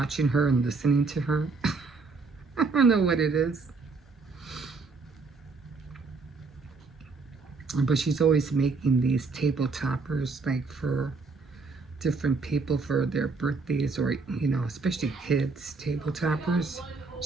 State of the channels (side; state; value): left; quieter; 4.2 dB